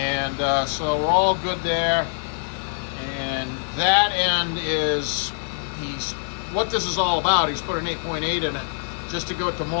so we're all good there. And that end is, what this is all about. He's put an 8.8 in it just to go to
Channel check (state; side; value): silent; right; digital silence